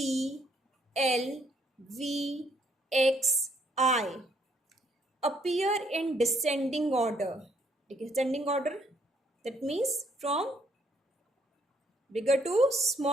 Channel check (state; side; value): normal; both; correlation 0.68